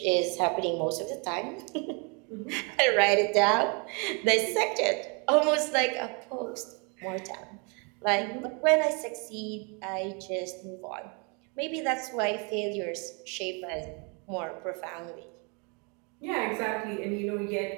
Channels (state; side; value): quieter; left; 34.1 dB